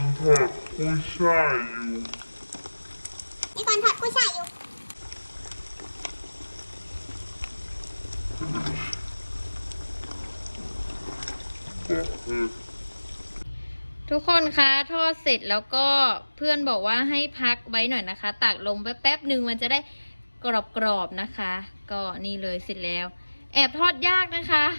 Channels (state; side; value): inverted; both; correlation -1.00